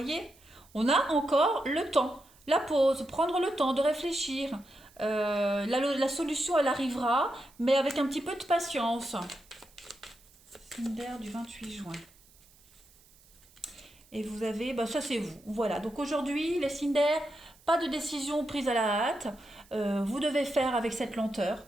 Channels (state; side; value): noise; right; hiss, 28 dB below the sound